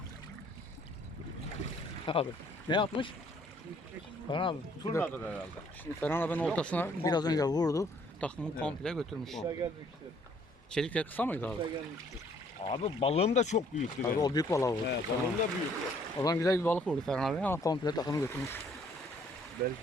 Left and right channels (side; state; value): both; normal; correlation 0.62